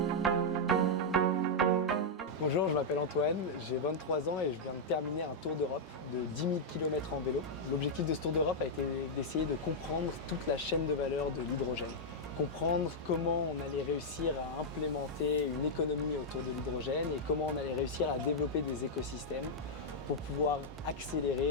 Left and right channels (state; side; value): normal; both; correlation -0.04